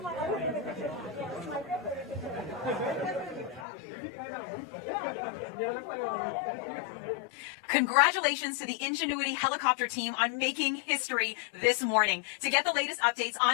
Congratulations to the Ingenuity helicopter team on making history this morning. To get the latest updates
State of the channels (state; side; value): drops out; right; at 3.7 s